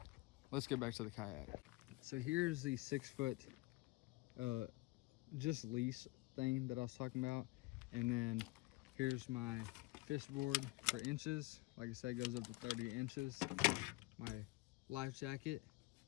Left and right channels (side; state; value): right; quieter; 21.7 dB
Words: let's get back to the kayak. So here's the 6-foot just leash thing that I was talking about, and then here's my fish board for inches. Like I said, it goes up to 30 inches. My life jacket,